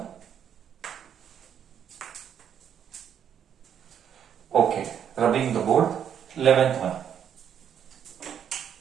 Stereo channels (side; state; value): left; quieter; 8.7 dB